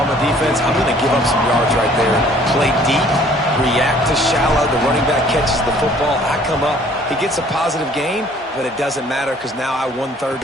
a defense, I'm going to give up some yards right there. Play deep, react to shallow. The running back catches the football. I come up. He gets a positive gain, but it doesn't matter because now I won 3rd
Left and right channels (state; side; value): normal; both; correlation 0.57